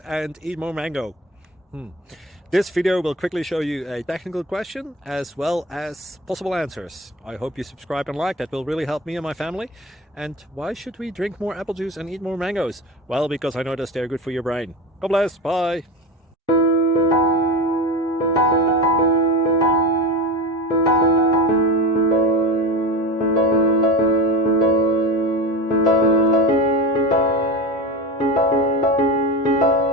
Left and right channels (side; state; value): both; normal; correlation 0.26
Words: and eat more mango. This video will quickly show you a technical question as well as possible answers. I hope you subscribe and like, that will really help me and my family. And why should we drink more apple juice and eat more mangoes? Well, because I noticed they're good for your brain. God bless, bye!